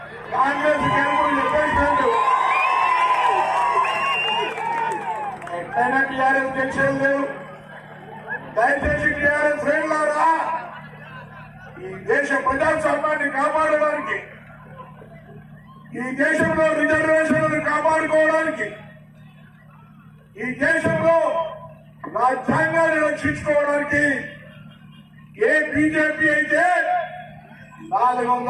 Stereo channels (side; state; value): both; identical; correlation 1.00